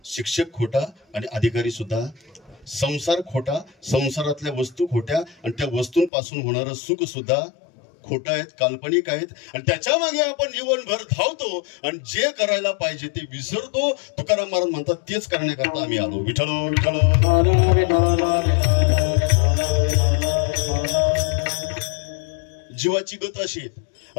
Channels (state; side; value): drops out; right; at 6.1 s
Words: शिक्षक खोटा आणि अधिकारी सुद्धा. संसार खोटा, संसारातल्या वस्तू खोट्या आणि त्या वस्तूंपासून होणारं सुख सुद्धा खोटं आहेत, काल्पनिक आहेत. आणि त्याच्या मागे आपण जीवनभर धावतो आणि जे करायला पाहिजे ते विसरतो. तुकाराम महाराज म्हणतात, तेच करण्याकरता आम्ही आलो. विठ्ठल विठ्ठल. जीवाची गत अशी आहे,